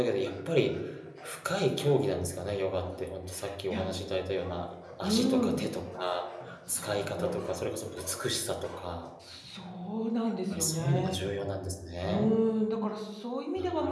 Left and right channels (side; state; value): both; identical; correlation 1.00